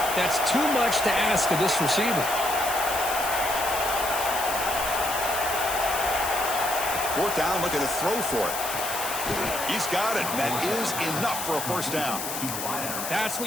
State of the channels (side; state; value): left; noise; hiss, 5 dB below the sound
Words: That's too much to ask of this receiver. 4th down, looking to throw for it. He's got it. That is enough for a first down. That's